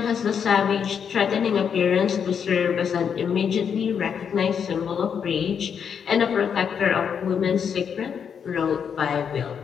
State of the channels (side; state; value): right; quieter; 7.3 dB